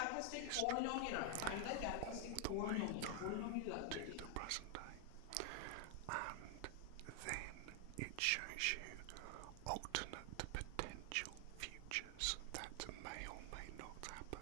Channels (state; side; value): different; both; correlation 0.00